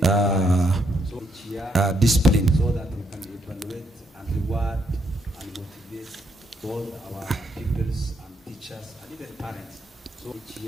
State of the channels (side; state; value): both; normal; correlation 0.76